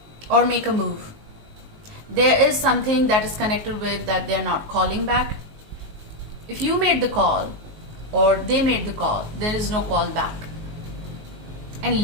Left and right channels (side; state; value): left; late; 19 ms